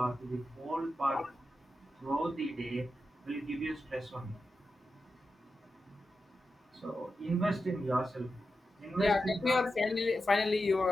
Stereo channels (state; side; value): normal; both; correlation 0.90